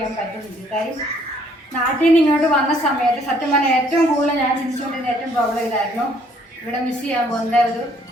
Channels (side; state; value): both; normal; correlation 0.64